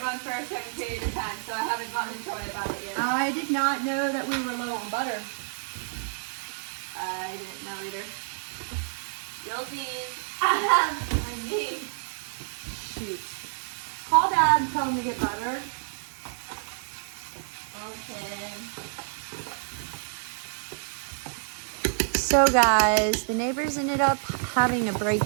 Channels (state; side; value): silent; left; digital silence